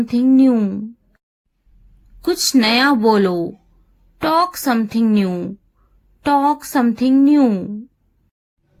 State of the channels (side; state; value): both; identical; correlation 1.00